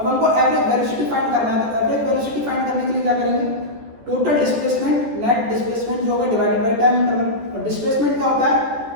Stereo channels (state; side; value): late; left; 14 ms